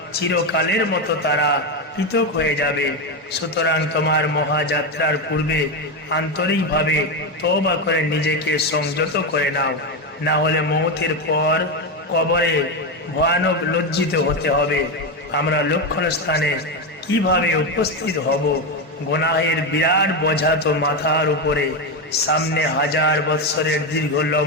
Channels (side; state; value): both; normal; correlation 0.11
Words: চিরকালের মতো তারা পৃথক হয়ে যাবে। সুতরাং তোমার মহাযাত্রার পূর্বে আন্তরিকভাবে তওবা করে নিজেকে সংযত করে নাও, না হলে মওতের পর কবরে ভয়ানক লজ্জিত হতে হবে। আমরা লক্ষণ স্থানে কিভাবে উপস্থিত হব? গুনাহের বিরাট বোঝা তো মাথার উপরে, সামনে 1000 বৎসরের দীর্ঘ